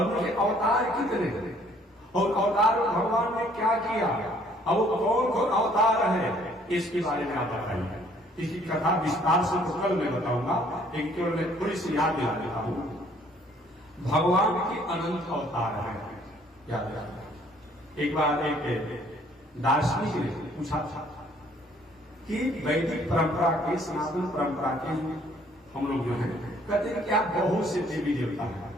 उनके अवतार कितने, और अवतार में भगवान ने क्या किया, अब वो कौन कौन अवतार है, इसके बारे में आप बताइए। इसकी कथा विस्तार से तो कल मैं बताऊंगा, लेकिन केवल मैं थोड़ी सी याद दिला देता हूं। भगवान के अनंत अवतार है, याद रखना। एक बार एक दार्शनिक ने पूछा था कि वैदिक परंपरा के, सनातन परंपरा के हम लोग जो है कहते हैं क्या बहुत से देवी देवता है,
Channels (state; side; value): normal; both; correlation 0.61